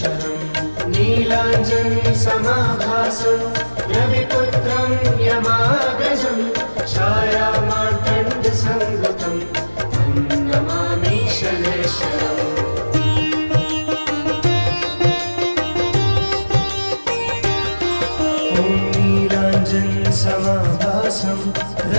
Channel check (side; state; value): both; inverted; correlation -1.00